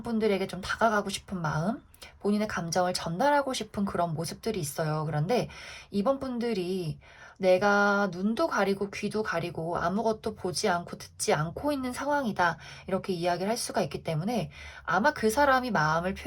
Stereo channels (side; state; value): both; identical; correlation 1.00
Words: 분들에게 좀 다가가고 싶은 마음, 본인의 감정을 전달하고 싶은 그런 모습들이 있어요. 그런데 이번 분들이 내가 눈도 가리고 귀도 가리고 아무것도 보지 않고 듣지 않고 있는 상황이다. 이렇게 이야기를 할 수가 있기 때문에 아마 그 사람이 마음을